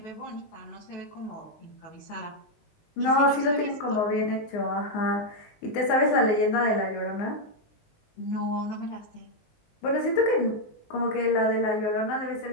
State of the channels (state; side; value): late; right; 19 ms